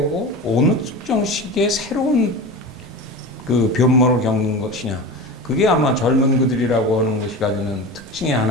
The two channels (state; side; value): normal; both; correlation 0.29